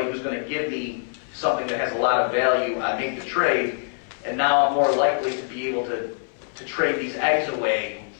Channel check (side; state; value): right; silent; 60 dB below the other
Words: who's going to give me something that has a lot of value, I make the trade, and now I'm more likely to be able to trade these eggs away